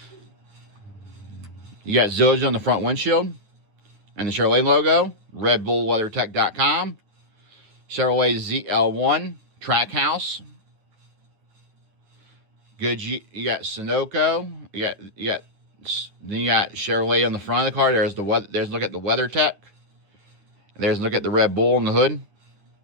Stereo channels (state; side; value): late; left; 9.9 ms